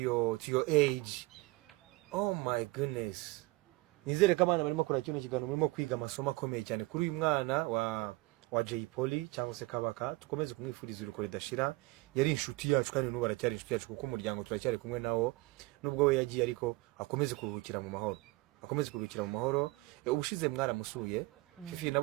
age. Oh my goodness. Nizere ko abana barimo kora kino kigano murimo kwiga amasomo akomeye cyane kuri uyu mwana wa Jay Polly cyangwa se Kabaka. Tukomeze kumwifuriza uruko ridashira. Yari inshuti yacu kandi n'ubu aracyari inshuti yacu kuko umuryango turacyari kumwe nawo, nubwo we yagiye ariko akomeze kuruhukira mu mahoro. Ubushize mwaramusuye Fifi,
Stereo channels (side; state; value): left; quieter; 23.2 dB